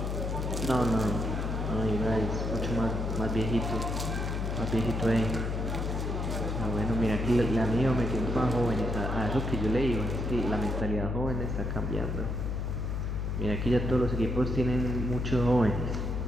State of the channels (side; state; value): left; noise; hum, 1 dB below the sound